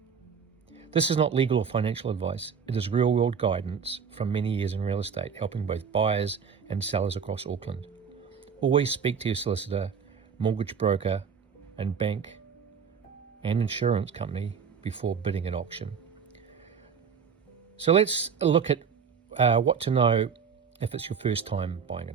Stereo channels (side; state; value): left; quieter; 6.6 dB